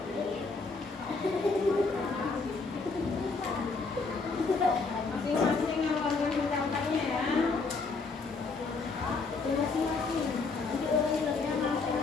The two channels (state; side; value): quieter; right; 4.2 dB